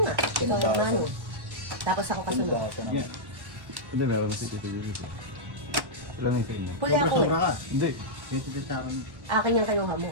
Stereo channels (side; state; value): left; late; 1.1 ms